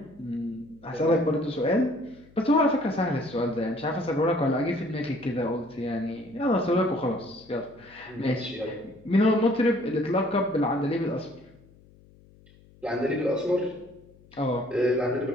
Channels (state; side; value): noise; left; hum, 26 dB below the sound